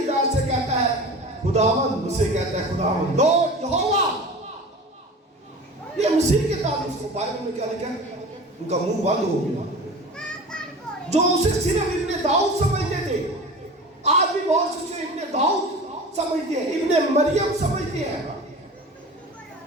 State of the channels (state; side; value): normal; both; correlation 0.36